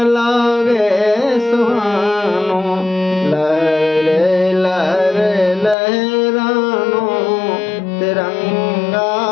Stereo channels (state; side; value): drops out; right; at 5.8 s